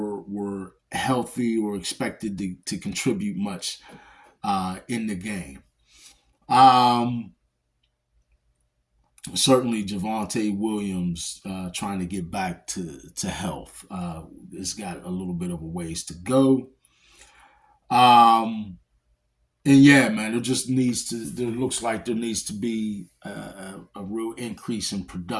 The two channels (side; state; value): both; identical; correlation 1.00